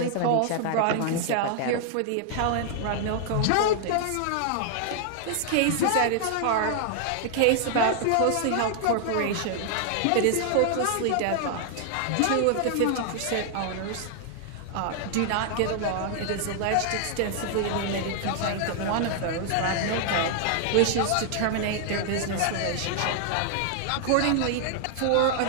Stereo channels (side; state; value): both; different; correlation 0.00